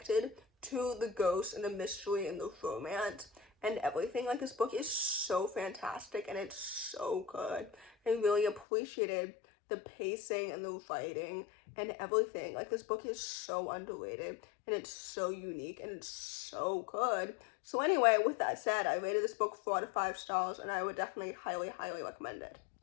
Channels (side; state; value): right; drops out; at 8.7 s